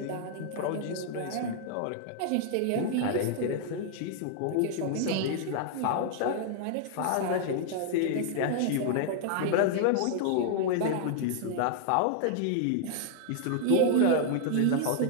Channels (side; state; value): both; different; correlation 0.00